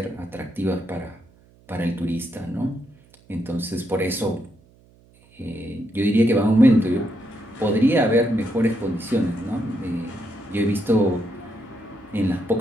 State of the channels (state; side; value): noise; right; hum, 29 dB below the sound